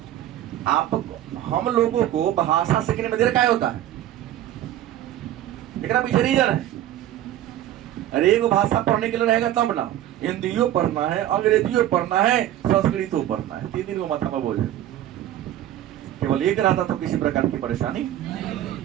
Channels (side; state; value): left; quieter; 12.7 dB